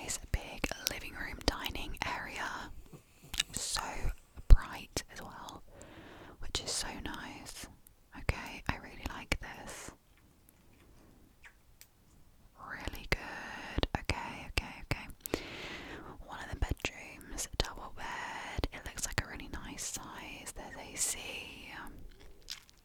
big living room, dining area. So bright as well, which is so nice. Okay, I really like this. Really good. Okay. One of the bedrooms, double bed. It looks like a really nice size. There's AC.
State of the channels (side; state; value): both; identical; correlation 1.00